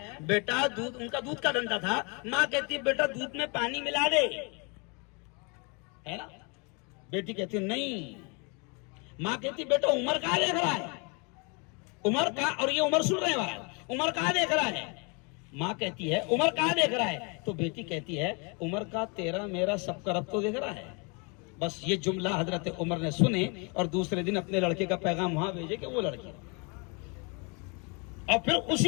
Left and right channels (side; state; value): right; quieter; 32.7 dB